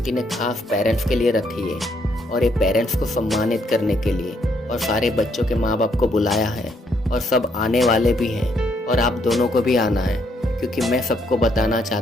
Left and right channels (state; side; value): normal; both; correlation 0.72